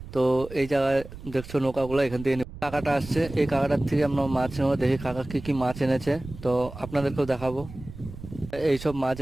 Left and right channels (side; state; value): right; noise; rumble, 14 dB below the sound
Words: তো এই জায়গায় দেখছো নৌকাগুলো, এখান থেকে কাকাটা আসছে, এই কাকাটার থেকে আমরা মাছ নেবো। দেখি কাকা কি কি মাছ এনেছে, তো আপনাদেরকেও দেখাবো। এইসব মাছ